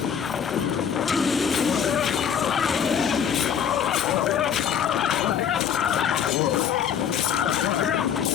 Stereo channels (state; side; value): quieter; right; 8.1 dB